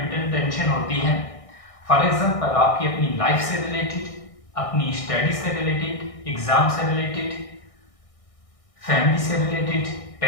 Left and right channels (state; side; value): late; right; 1.6 ms